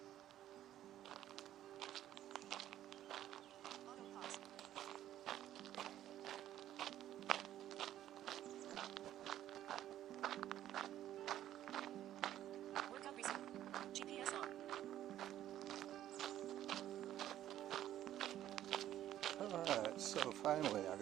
Auto pause. Workout resumed. GPS on. Alright, so finally I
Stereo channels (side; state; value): left; quieter; 12.3 dB